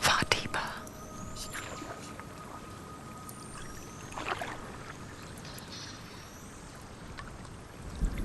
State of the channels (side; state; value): both; identical; correlation 1.00